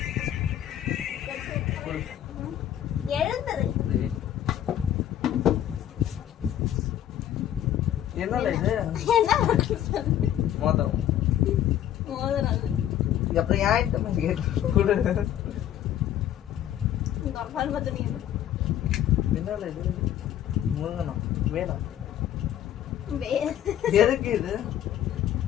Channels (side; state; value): right; quieter; 11.3 dB